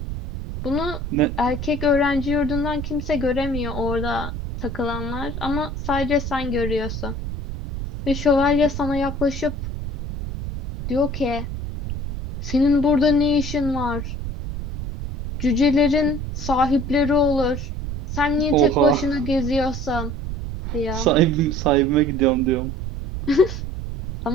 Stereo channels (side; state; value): right; noise; rumble, 6 dB below the sound